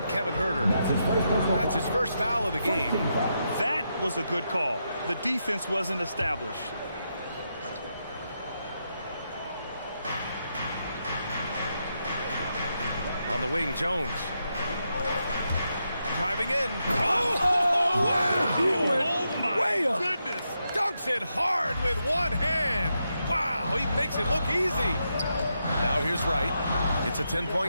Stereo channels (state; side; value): inverted; both; correlation -0.83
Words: Kevin Huerter. That's his first foul of the game. That was a good call. The defense wasn't established. On the wing, Jones. Driving in. Oh, wow. He went way up. Goodness. Dunks it hard with one hand. Wow, he makes it look easy. Now here's Wright. It's a